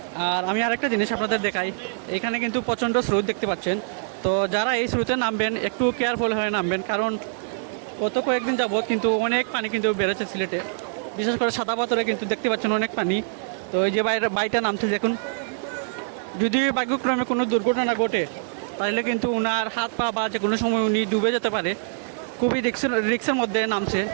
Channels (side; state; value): left; silent; digital silence